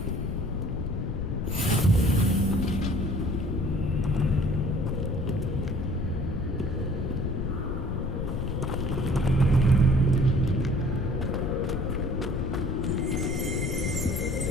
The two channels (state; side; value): noise; left; rumble, 2 dB below the sound